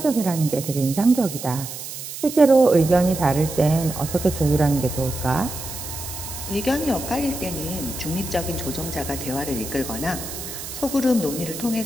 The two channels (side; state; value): right; noise; hiss, 9 dB below the sound